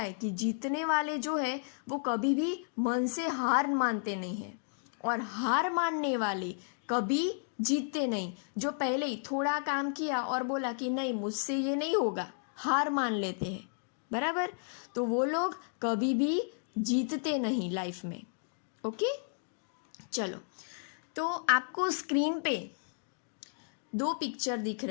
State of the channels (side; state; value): right; silent; digital silence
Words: कि जीतने वाले जो है वो कभी भी मन से हार मानते नहीं हैं और हार मानने वाले कभी जीतते नहीं। जो पहले ही थोड़ा काम किया और बोला कि नहीं मुझसे ये नहीं होगा, हार मान लेते हैं, बराबर, तो वो लोग कभी भी जीतते नहीं लाइफ में। ओके, चलो, तो आपको स्क्रीन पे दो पिक्चर दिख